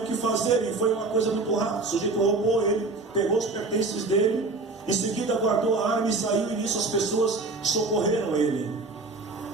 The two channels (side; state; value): left; quieter; 3.5 dB